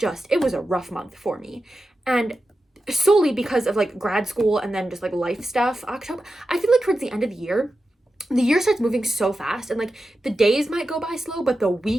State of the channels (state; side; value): normal; both; correlation 0.91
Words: it was a rough month for me. And solely because of grad school and then just life stuff, October, I feel like towards the end of the year starts moving so fast, and the days might go by slow, but the